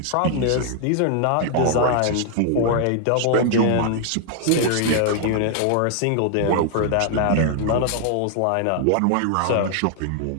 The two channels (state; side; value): different; both; correlation 0.00